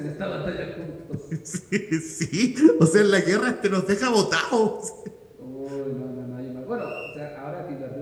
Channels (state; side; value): identical; both; correlation 1.00